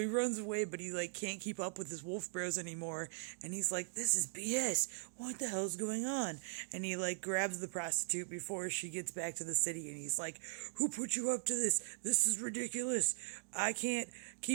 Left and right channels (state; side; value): silent; left; digital silence